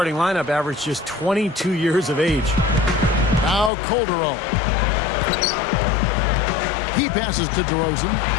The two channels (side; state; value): right; drops out; at 3.7 s